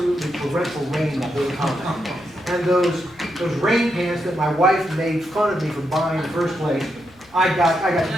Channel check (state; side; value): noise; left; hum, 30 dB below the sound